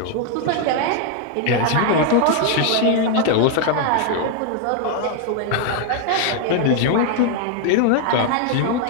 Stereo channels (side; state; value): both; different; correlation 0.00